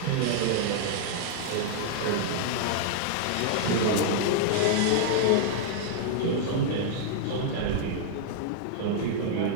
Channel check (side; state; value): both; different; correlation -0.01